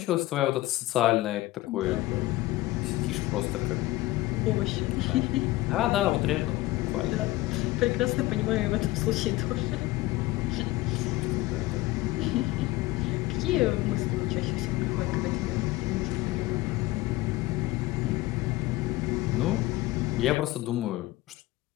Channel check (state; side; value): quieter; right; 18.3 dB